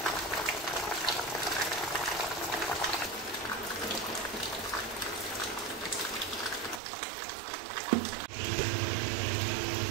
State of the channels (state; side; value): drops out; left; at 6.8 s